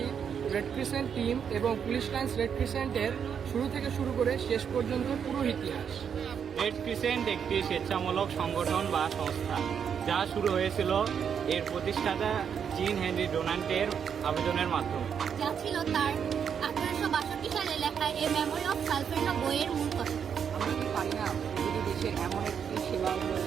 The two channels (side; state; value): left; quieter; 7.5 dB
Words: রেড ক্রিসেন্ট টিম এবং পুলিশ লাইন্স রেড ক্রিসেন্টের শুরু থেকে শুরু করে শেষ পর্যন্ত পুরো ইতিহাস। রেড ক্রিসেন্ট একটি স্বেচ্ছামূলক সংগঠন বা সংস্থা যা শুরু হয়েছিল এর প্রতিষ্ঠাতা জিন হেনরি ডোনাল্টের আবেদনের মাধ্যমে। যা ছিল তার 1862 সালে লেখা এ মেমোরি অফ সালফেন্ডা বইয়ের মূল কথা। আমরা কি পারি না প্রতিটি দেশের এমন একটি সেবামূলক